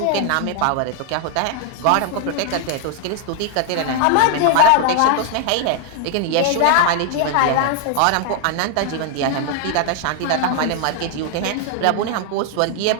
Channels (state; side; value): different; both; correlation 0.00